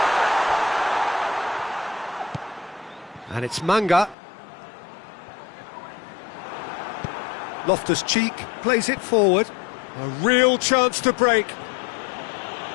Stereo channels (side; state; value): right; drops out; at 4.2 s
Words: And it's Manga. Loftus-Cheek plays it forward. A real chance to break.